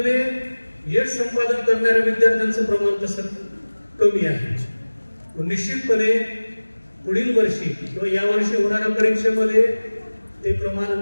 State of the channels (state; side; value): inverted; both; correlation -1.00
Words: यश संपादन करणाऱ्या विद्यार्थ्यांचं प्रमाण तसं कमी आहे. निश्चितपणे पुढील वर्षी किंवा या वर्षी होणाऱ्या परीक्षेमध्ये ते प्रमाण